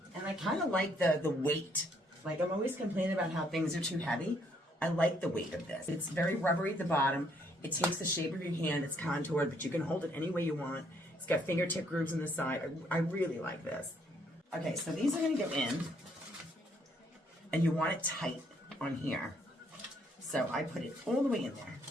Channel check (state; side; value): normal; both; correlation 0.69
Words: And I kind of like the weight. Like, I'm always complaining about how things are too heavy. I like the weight of this. It's very rubbery at the bottom. It takes the shape of your hand. It's contoured, but you can hold it any way you want. It's got fingertip grooves on the side. I really like this. Okay, so these are gonna go in, and you want it tight on here. So I put it all the way in there.